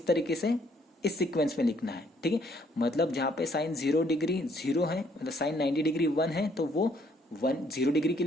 तरीके से इस सीक्वेंस में लिखना है। ठीक है, मतलब जहां पे साइन 0 डिग्री 0 है, मतलब साइन 90 डिग्री 1 है, तो वो 0 डिग्री के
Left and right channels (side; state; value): both; normal; correlation 0.66